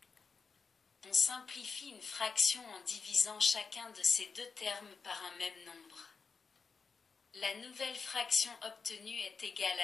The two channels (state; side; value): quieter; right; 5.1 dB